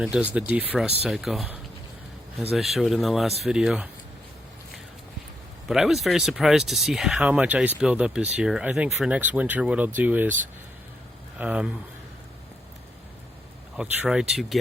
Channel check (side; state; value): both; normal; correlation 0.79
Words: it does the defrost cycle, as I showed in the last video. But I was very surprised to see how much ice buildup is here. I think for next winter what I'll do is I'll try to